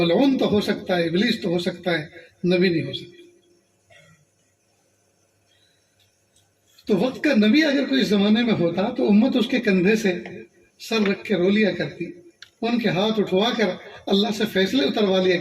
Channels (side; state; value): both; identical; correlation 1.00